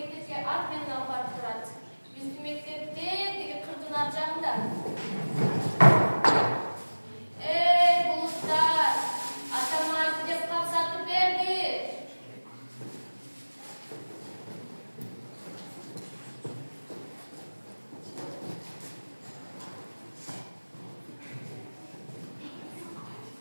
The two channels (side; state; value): both; inverted; correlation -1.00